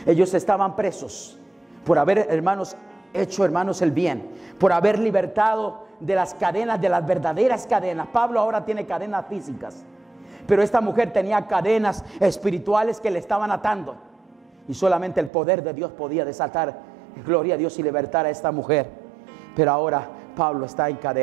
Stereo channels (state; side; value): drops out; left; at 15.3 s